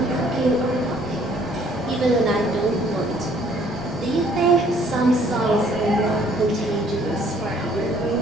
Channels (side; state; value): both; normal; correlation 0.61